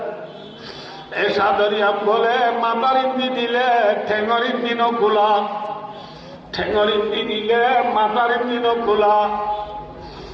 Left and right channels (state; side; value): identical; both; correlation 1.00